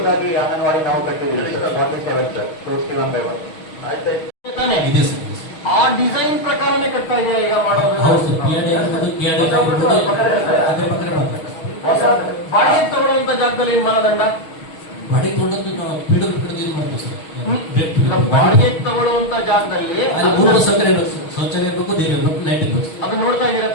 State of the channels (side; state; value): right; late; 6.3 ms